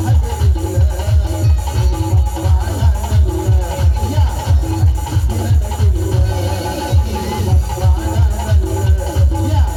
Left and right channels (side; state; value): both; identical; correlation 1.00